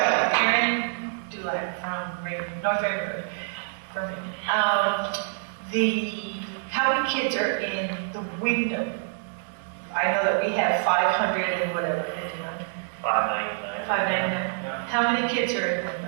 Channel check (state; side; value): silent; left; digital silence